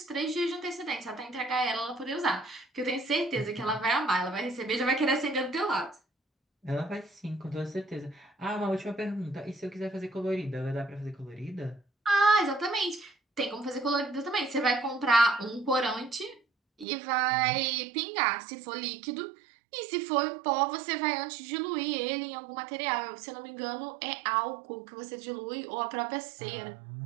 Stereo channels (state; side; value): drops out; left; at 16.9 s